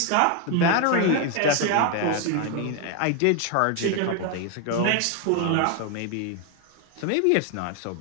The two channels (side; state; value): both; different; correlation 0.01